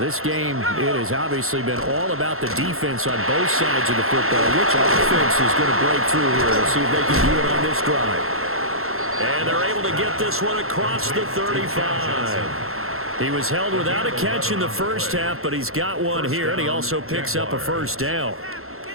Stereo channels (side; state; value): left; late; 0.62 ms